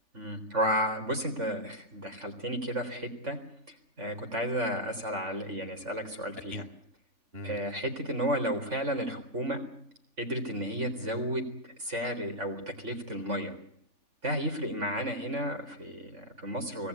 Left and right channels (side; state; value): left; late; 3.5 ms